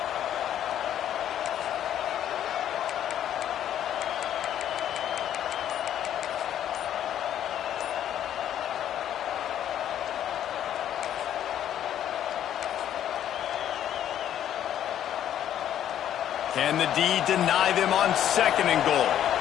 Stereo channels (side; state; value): right; quieter; 10.7 dB